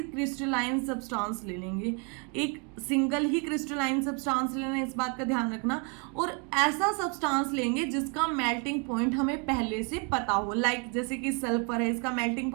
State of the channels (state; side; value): quieter; left; 36.3 dB